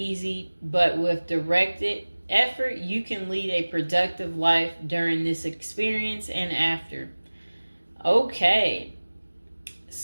but with directed effort, you can lead a productive life during this experience and after. Okay,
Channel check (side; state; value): both; inverted; correlation -1.00